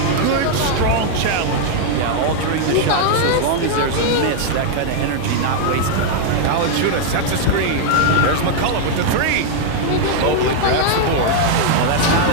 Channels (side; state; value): both; different; correlation 0.00